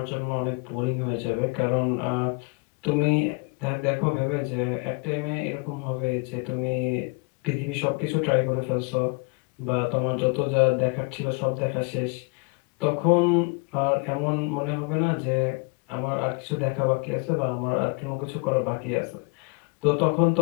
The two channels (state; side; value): quieter; right; 33.2 dB